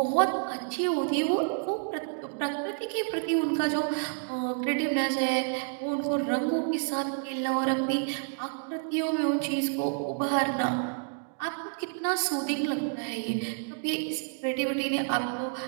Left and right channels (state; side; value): silent; left; digital silence